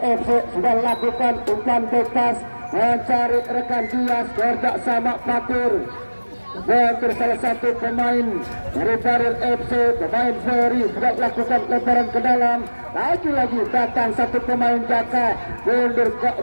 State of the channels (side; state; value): both; inverted; correlation -1.00